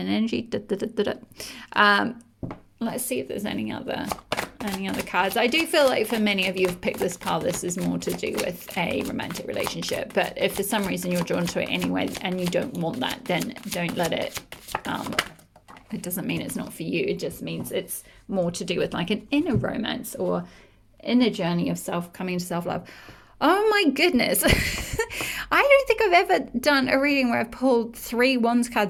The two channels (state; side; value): identical; both; correlation 1.00